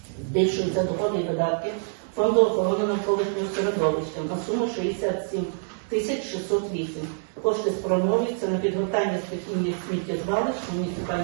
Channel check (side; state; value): left; silent; digital silence